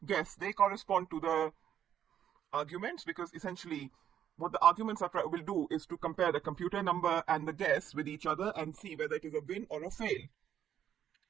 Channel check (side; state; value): left; quieter; 9.8 dB